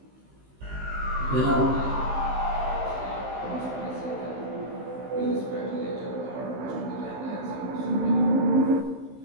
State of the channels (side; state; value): left; late; 15 ms